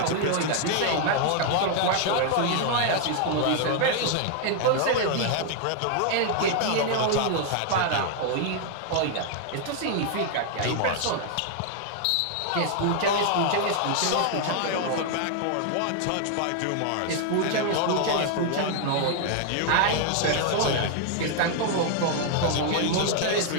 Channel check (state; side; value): different; both; correlation 0.00